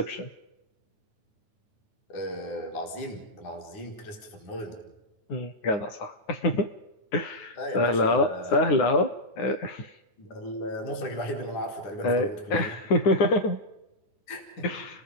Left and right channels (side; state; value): right; late; 9.6 ms